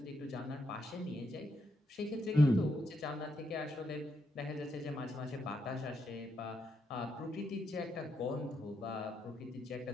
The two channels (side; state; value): both; normal; correlation 0.80